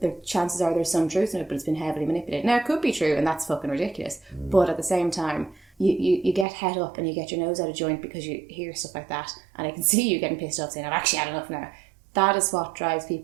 The chances are there's some truth in it, but it's been heavily manipulated. Now, it could be true, and that's fucking ridiculous. But at the same time, you get head up and you get your nose out of joint because you hear stuff like that, and I can see you getting pissed off saying, I've actually had enough now. That is what drives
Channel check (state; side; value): drops out; left; at 6.5 s